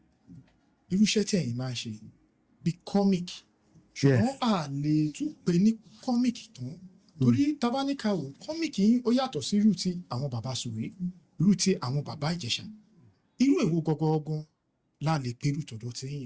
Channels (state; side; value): identical; both; correlation 1.00